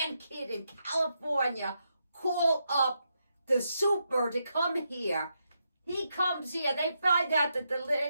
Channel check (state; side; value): inverted; both; correlation -0.82